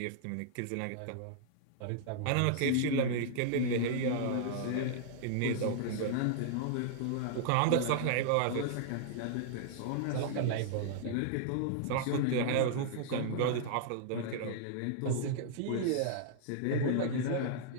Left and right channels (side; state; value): both; different; correlation -0.01